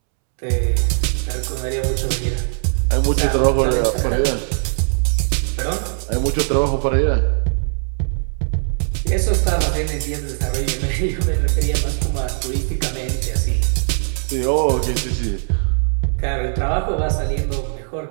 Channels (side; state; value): left; silent; 66 dB below the other